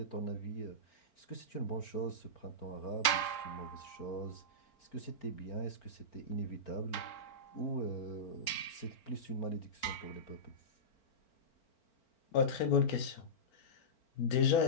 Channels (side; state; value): right; late; 4.4 ms